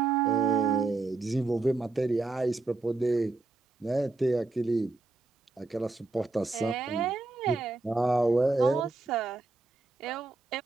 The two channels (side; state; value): left; quieter; 3.5 dB